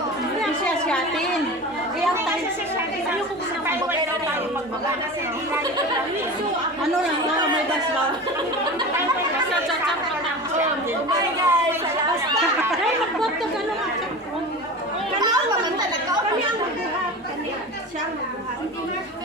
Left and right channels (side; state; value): both; normal; correlation 0.31